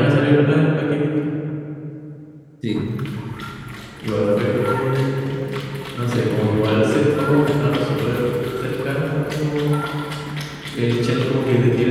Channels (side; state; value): both; identical; correlation 1.00